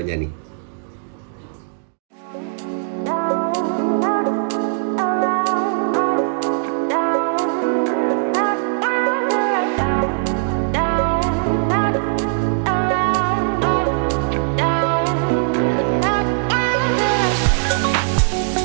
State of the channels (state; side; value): silent; left; digital silence